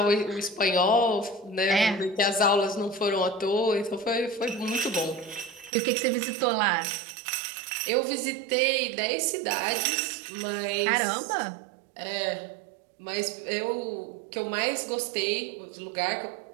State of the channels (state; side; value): drops out; left; at 5.7 s